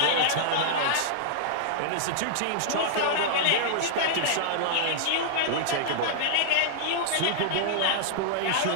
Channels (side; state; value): both; different; correlation -0.01